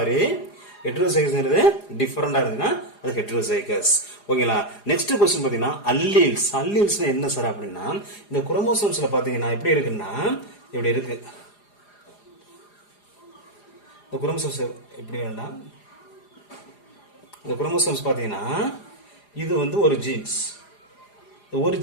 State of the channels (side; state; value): right; late; 4.9 ms